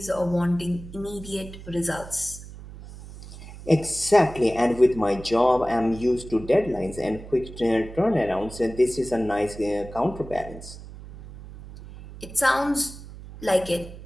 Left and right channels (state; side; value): noise; right; hum, 15 dB below the sound